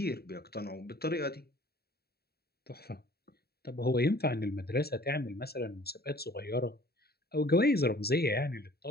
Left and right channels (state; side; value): late; right; 0.46 ms